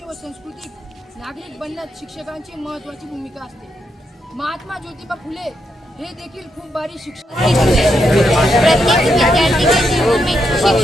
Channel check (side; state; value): both; normal; correlation 0.81